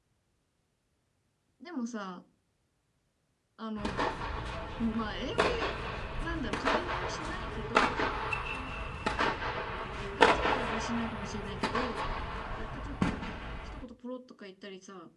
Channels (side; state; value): both; identical; correlation 1.00